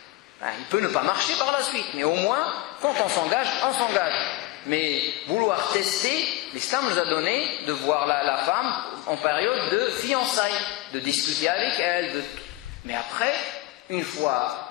Il peut ne pas marcher par la suite, mais au moins, quand on s'engage, on s'engage. Mais vouloir tester, l'islam nous a donné de voir la femme en période de fiançailles, de discuter avec elle. Mais après, une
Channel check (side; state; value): right; quieter; 18.4 dB